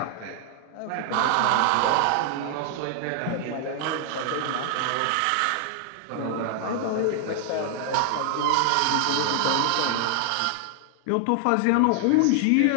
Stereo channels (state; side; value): different; both; correlation 0.00